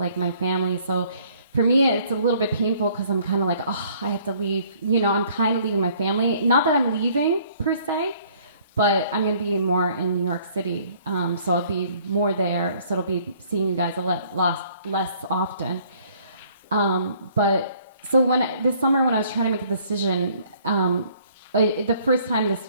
my family. So for me, it's a little bit painful because I'm kind of like, oh, I have to leave. I'm kind of leaving my family. Not that I'm leaving per se, but I'm going to be more in New York City. So I'll be more there. So it'll be seeing you guys less often. But so this summer when I was trying to make a decision, the first time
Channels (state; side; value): inverted; both; correlation -0.60